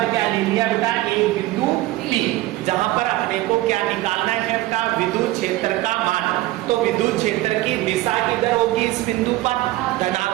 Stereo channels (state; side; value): quieter; left; 17.5 dB